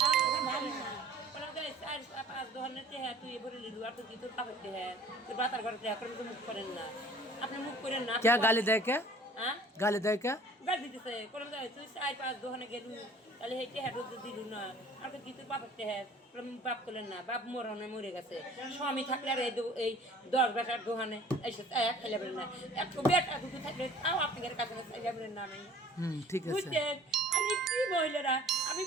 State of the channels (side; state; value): both; normal; correlation 0.50